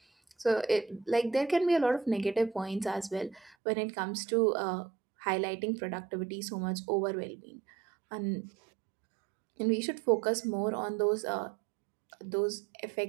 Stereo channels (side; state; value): left; drops out; at 3.6 s